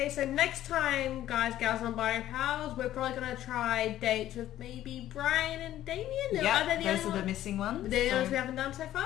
so next time, guys, gals, and bio pals, we're probably going to try dates with maybe Brian and Damien. Yeah, Are they those only are the missing ones. They're the so- ones we haven't done so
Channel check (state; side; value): quieter; right; 13.0 dB